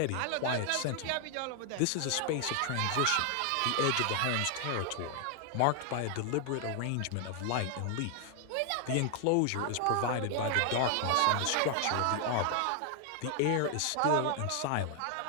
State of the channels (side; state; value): both; different; correlation 0.00